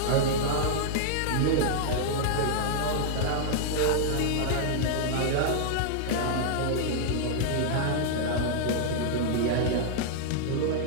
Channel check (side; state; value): both; different; correlation -0.01